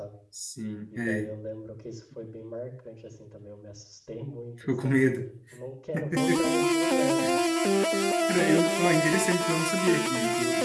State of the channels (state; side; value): identical; both; correlation 1.00